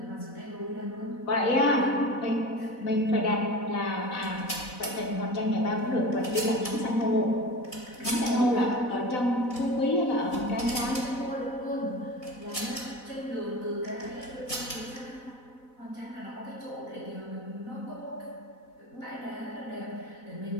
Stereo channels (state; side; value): late; right; 4.0 ms